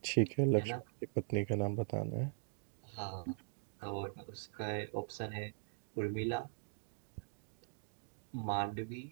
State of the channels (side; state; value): left; silent; digital silence